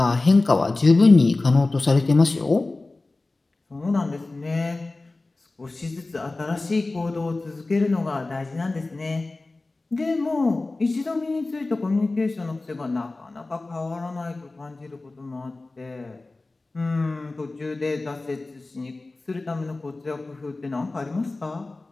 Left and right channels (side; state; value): right; quieter; 3.2 dB